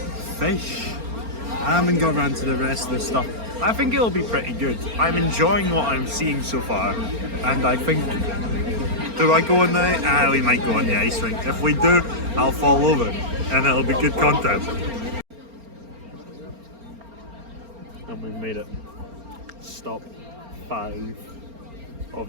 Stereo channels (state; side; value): late; left; 4.3 ms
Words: fish. I haven't got around to the rest of the stuff. I think it'll be pretty good. I'm enjoying what I'm seeing so far, and I think, do I go on the, we might go on the ice rink. If we do, I'll fall over, and it'll be good content. And we've made it. Stop 5